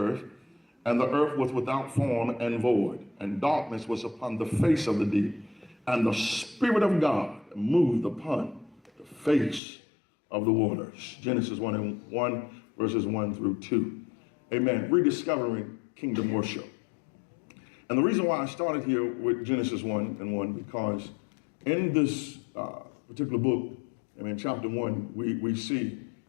was without form and void, and darkness was upon the face of the deep, and the Spirit of God moved upon the face of the waters. Genesis 1:1, verses 1 through 2. Amen. Rediscovering kingdom worship. And the reason why I started here with Genesis 1:1, because in this particular book, chapter 1, we see,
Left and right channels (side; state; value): right; drops out; at 9.6 s